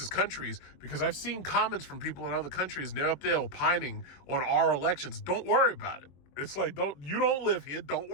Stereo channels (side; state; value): right; late; 22 ms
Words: countries, because I've seen comments from people in other countries and they're up there opining on our elections. Don't worry about it. It's like, you don't live here. Don't